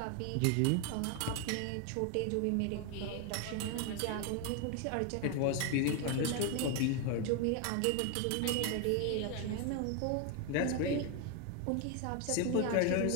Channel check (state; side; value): different; both; correlation 0.01